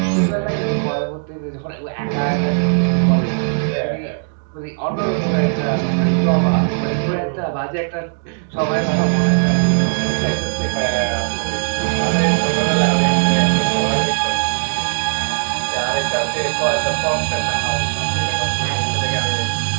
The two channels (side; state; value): left; silent; 67 dB below the other